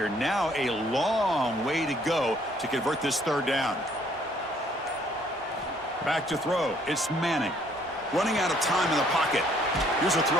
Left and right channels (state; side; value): normal; both; correlation 0.63